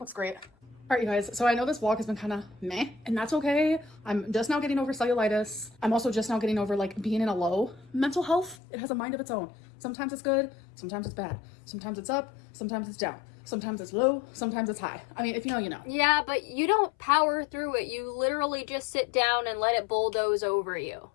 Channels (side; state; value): right; drops out; at 8.6 s